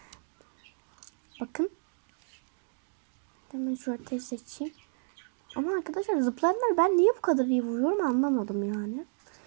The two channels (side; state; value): left; silent; 57 dB below the other